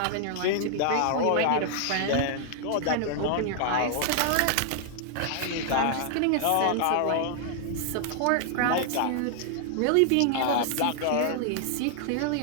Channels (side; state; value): both; different; correlation 0.00